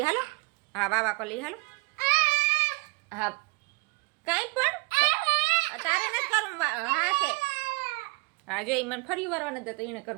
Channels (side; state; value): left; quieter; 29.0 dB